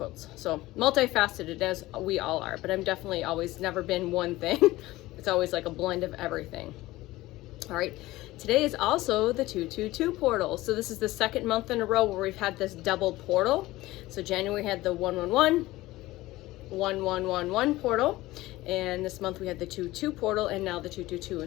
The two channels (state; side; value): quieter; right; 18.0 dB